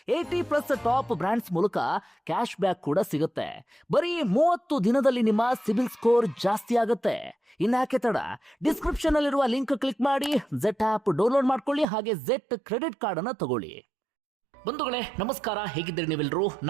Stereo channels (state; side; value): drops out; left; at 11.9 s